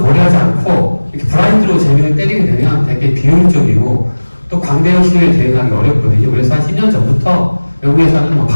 않고 이렇게 블라인드로 재미를 때리게 되면 되게 비효율적이고, 또 광대형 신호에 대응하기 어렵거든요. 그래서 한 10년 전부터 외국에서는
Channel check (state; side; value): inverted; both; correlation -1.00